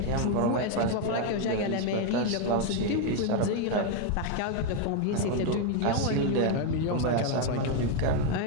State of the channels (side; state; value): both; different; correlation 0.01